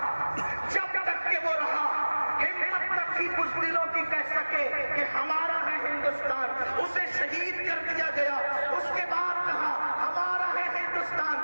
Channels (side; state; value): both; inverted; correlation -1.00